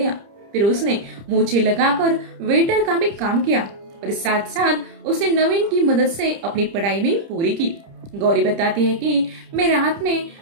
फिर उसने मूछें लगाकर वेटर का भी काम किया और साथ साथ उसने नवीन की मदद से अपनी पढ़ाई भी पूरी की। गौरी बताती है कि मैं रात में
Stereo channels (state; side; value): late; left; 30 ms